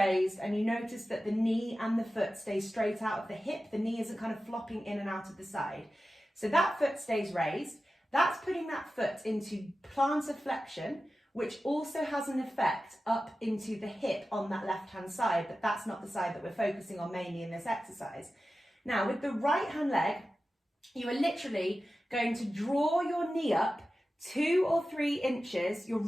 and you notice that the knee and the foot stay straight out of the hip. The knee isn't kind of flopping in and out of the side. So that foot stays raised. That's putting that foot into plantar flexion, which also has an effect up into the hip on that left-hand side, but that's not the side that we're focusing on mainly in this exercise. Now, with the right-hand leg, you are literally going to draw your knee up 2 or 3 inches. You're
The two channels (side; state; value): both; normal; correlation 0.94